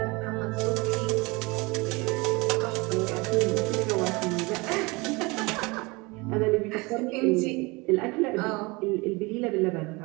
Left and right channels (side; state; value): left; quieter; 25.5 dB